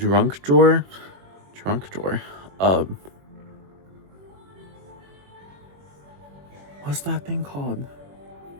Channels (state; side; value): late; left; 21 ms